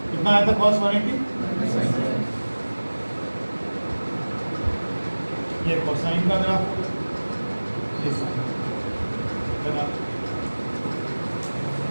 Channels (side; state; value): both; inverted; correlation -1.00